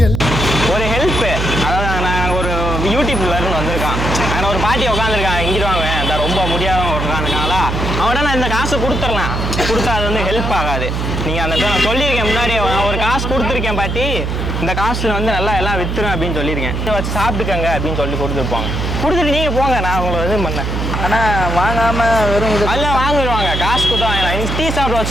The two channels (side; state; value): right; noise; hum, 2 dB below the sound